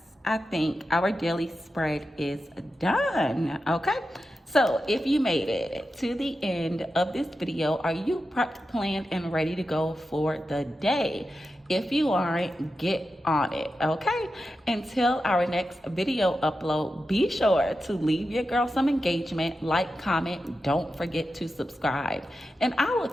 I think our daily spread is done, okay? So if you made it to the end of this video, are you prepped, planned, and ready to go for the day? If you aren't, get on it, okay? Until our next video upload, be sure to leave your girl some engagement, like, comment, don't forget to subscribe. And I will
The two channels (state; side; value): normal; both; correlation 0.91